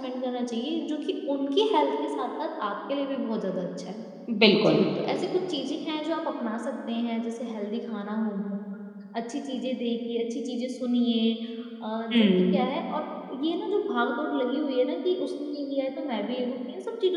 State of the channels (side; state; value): both; identical; correlation 1.00